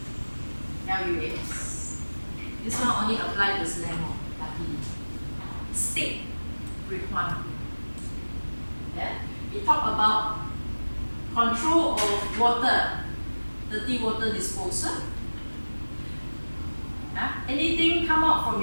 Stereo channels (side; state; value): both; inverted; correlation -1.00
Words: LUAS. This one only applies to Leong. State requirement. Yeah? We talk about control of water, dirty water disposal. Yeah? Anything come out from